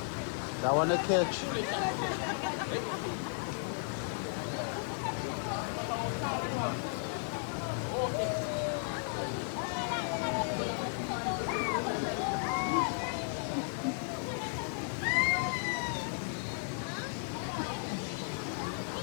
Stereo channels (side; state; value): right; silent; 55 dB below the other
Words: That one to catch.